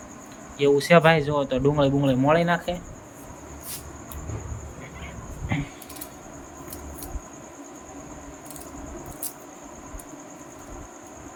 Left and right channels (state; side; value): identical; both; correlation 1.00